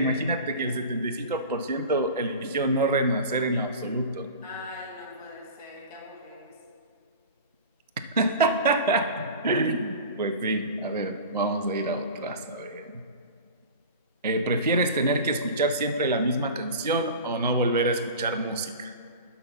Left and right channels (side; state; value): both; inverted; correlation -0.33